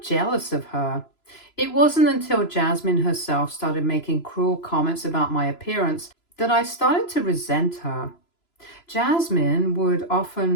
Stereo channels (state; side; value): late; right; 3.0 ms